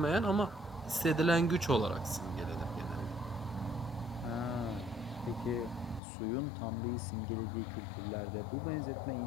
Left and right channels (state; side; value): drops out; right; at 6.0 s